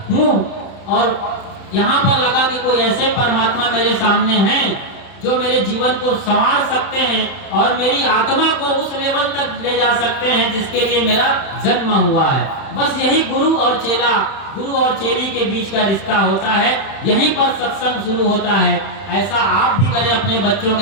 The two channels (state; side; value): late; right; 30 ms